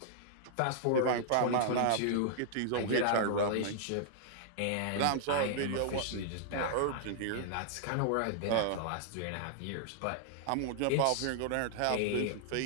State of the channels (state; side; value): different; both; correlation -0.01